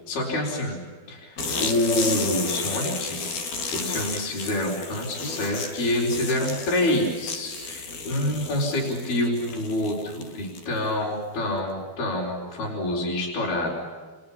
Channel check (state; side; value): late; right; 12 ms